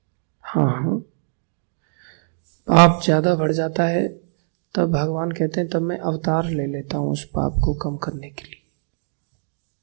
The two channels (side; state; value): left; silent; digital silence